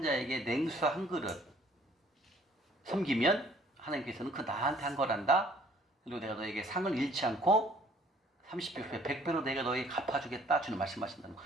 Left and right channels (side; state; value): both; normal; correlation 0.58